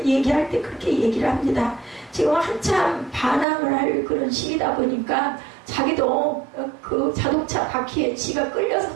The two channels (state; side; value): drops out; left; at 3.5 s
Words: 얘기할 때 그렇게 얘기를 합니다. 지금 한참 반항을 할 그런 시기다 보니까 자기도 그 자동차 바퀴에 지가 끌려서